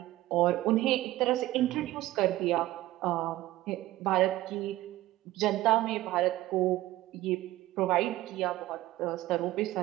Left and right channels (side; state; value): left; quieter; 16.4 dB